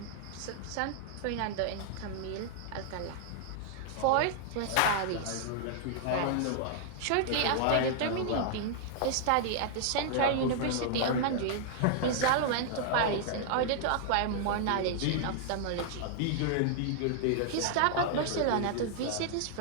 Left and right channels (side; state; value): both; different; correlation -0.01